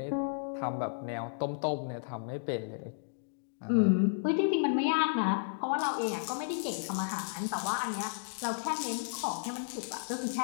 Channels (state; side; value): silent; right; digital silence